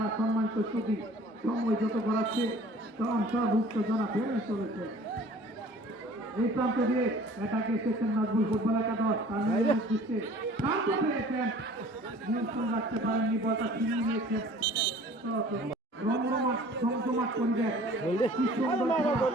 সম্মানিত ছবি সময় যত করাচ্ছে উত্তেজনা বেড়ে চলেছে। এই প্রান্ত দিয়ে এটাকে এসেছেন নাজমুল ফুটবল একাদশ, তার দৃষ্টি শান্ত পেয়েছেন, নিয়ন্ত্রণ রাখতে পারেননি, বলটা ছিনিয়ে নিয়েছেন। রমরমাট জমজমাট পরিবেশ, কি সুন্দর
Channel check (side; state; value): both; normal; correlation 0.49